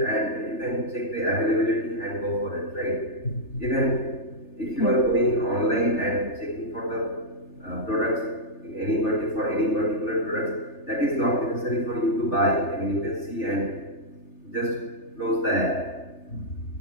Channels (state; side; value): late; right; 3.3 ms